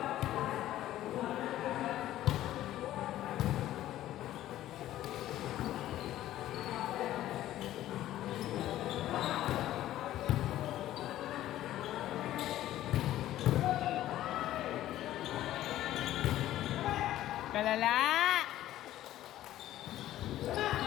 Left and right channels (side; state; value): right; quieter; 13.7 dB